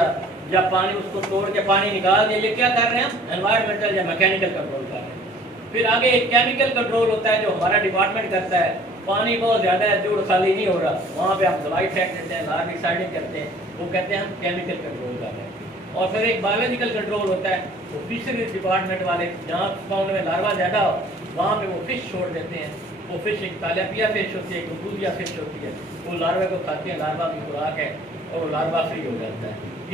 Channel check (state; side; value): normal; both; correlation 0.52